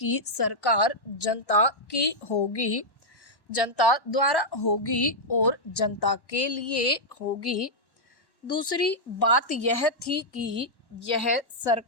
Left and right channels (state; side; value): late; right; 1.1 ms